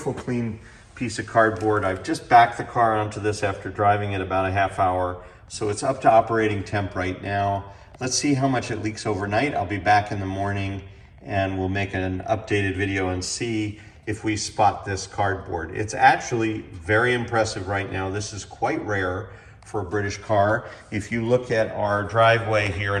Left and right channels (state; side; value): identical; both; correlation 1.00